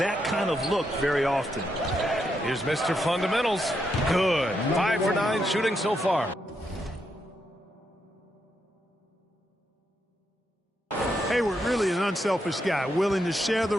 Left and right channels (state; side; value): normal; both; correlation 0.81